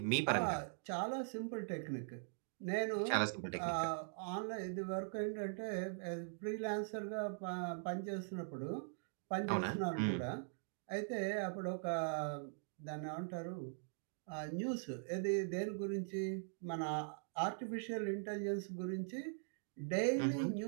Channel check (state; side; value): silent; left; digital silence